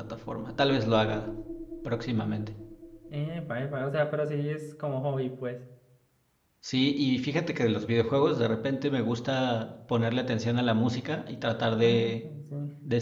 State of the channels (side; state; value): both; identical; correlation 1.00